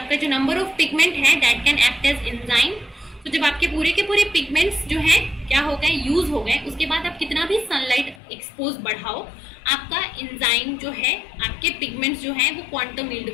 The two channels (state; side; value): drops out; right; at 8.2 s